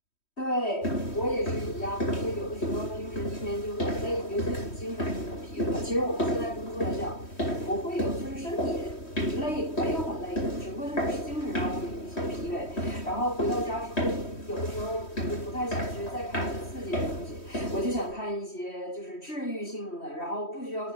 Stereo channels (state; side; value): late; right; 3.1 ms